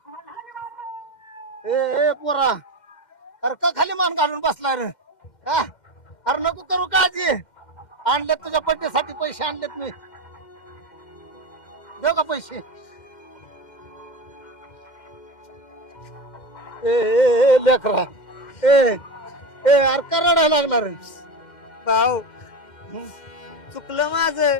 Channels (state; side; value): late; right; 2.1 ms